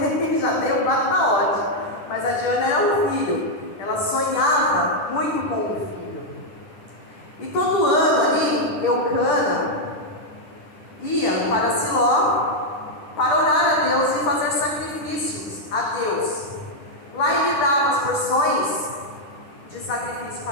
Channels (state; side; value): late; right; 10 ms